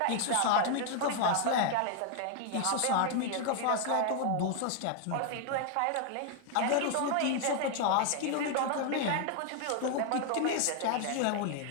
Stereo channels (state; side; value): different; both; correlation 0.00